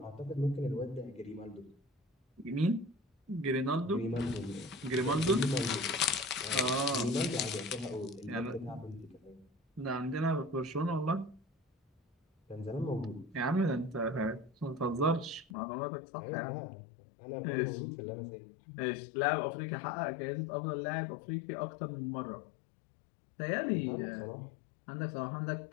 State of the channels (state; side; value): drops out; right; at 15.5 s